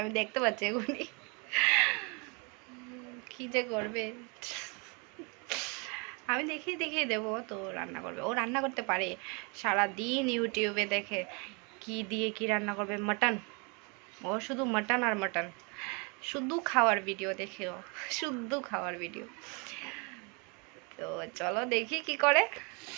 আমি দেখতে পাচ্ছি এগুলি কি যে করবে, আমি দেখিয়ে দেখিয়ে দেবো। তো রান্না করবে, ও রান্না করতে পারে। সারা দিন ইউটিউবে দেখে কি দিয়ে কি রান্না করবে। মাটন, ও শুধু মাটন আর মাটন, শুধু খাওয়ার ভিডিও দেখে, ও শুধু খাওয়ার ভিডিও। তো চলো দেখি কি করে।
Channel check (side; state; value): left; quieter; 32.6 dB